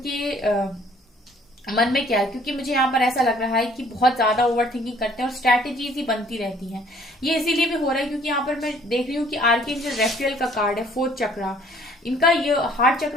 मन में क्या है, क्योंकि मुझे यहाँ पर ऐसा लग रहा है कि बहुत ज्यादा ओवर थिंकिंग करते हैं और स्ट्रैटेजीज ही बनती रहती हैं। ये इसीलिए भी हो रहा है क्योंकि यहाँ पर मैं देख रही हूँ कि आर्कएंजल रेफेल का कार्ड है, 4th चक्रा। इनका ये हार्ट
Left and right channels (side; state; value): both; normal; correlation 0.59